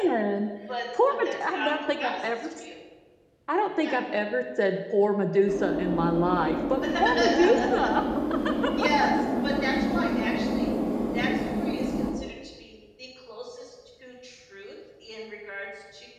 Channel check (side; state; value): both; identical; correlation 1.00